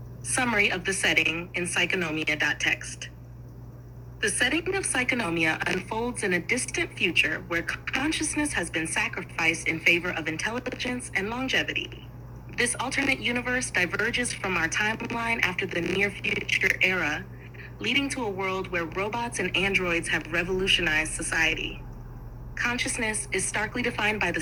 Summary of the setting in Psychonomia.txt. The setting of Psychonomia unfolds in a distant future where consciousness has been sacrificed in favor of intelligence and longevity. This alternate universe diverges from our timeline after the near future era, leading to a world where robots and androids have revolutionized society. Consciousness is starkly defined by the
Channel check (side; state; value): both; identical; correlation 1.00